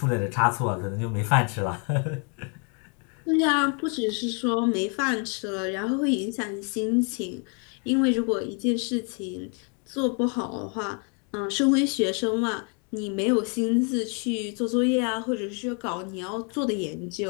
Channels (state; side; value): quieter; right; 38.1 dB